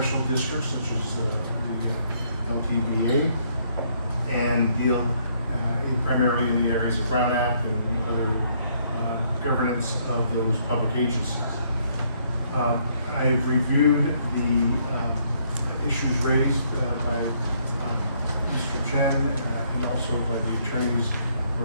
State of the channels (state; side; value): inverted; both; correlation -0.68